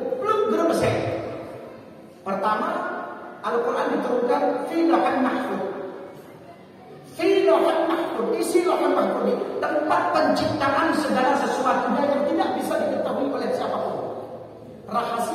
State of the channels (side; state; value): both; identical; correlation 1.00